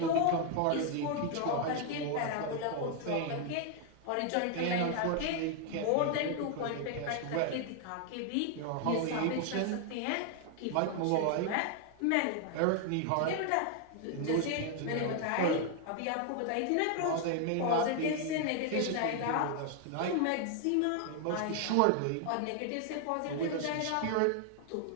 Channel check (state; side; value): different; both; correlation 0.00